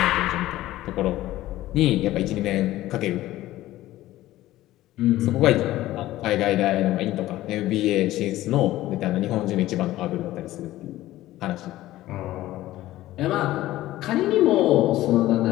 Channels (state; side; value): quieter; right; 15.6 dB